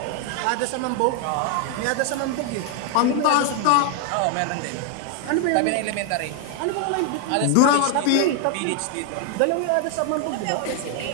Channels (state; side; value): different; both; correlation 0.00